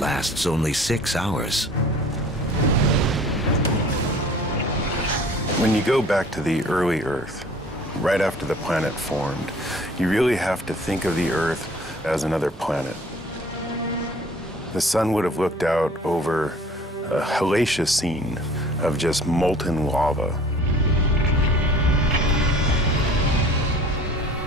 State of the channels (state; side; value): normal; both; correlation 0.49